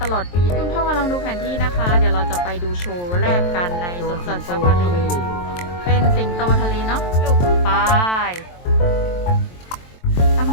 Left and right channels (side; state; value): right; late; 23 ms